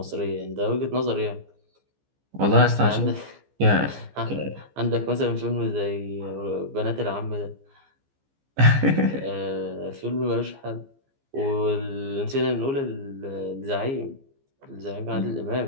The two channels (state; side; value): late; left; 15 ms